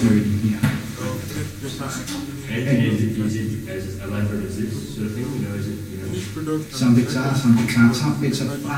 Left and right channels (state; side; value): identical; both; correlation 1.00